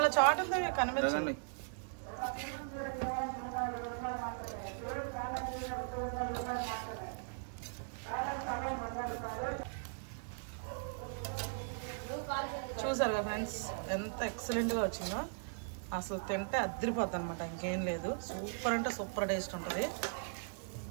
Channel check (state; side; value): silent; left; digital silence